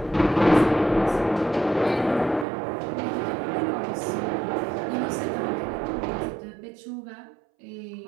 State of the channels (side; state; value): left; drops out; at 2.5 s